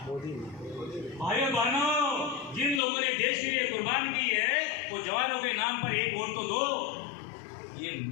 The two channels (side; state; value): right; drops out; at 2.8 s